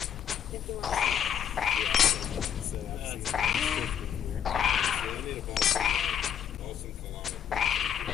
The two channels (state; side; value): quieter; right; 8.9 dB